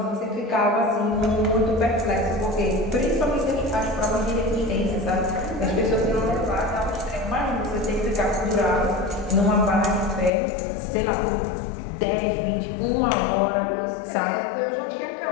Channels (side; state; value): right; drops out; at 10.3 s